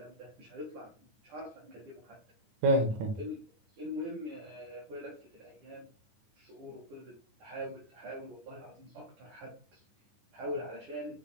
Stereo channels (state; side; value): late; left; 9.7 ms